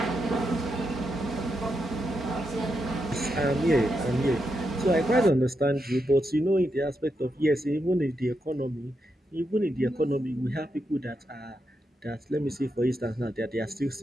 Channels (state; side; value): normal; both; correlation 0.84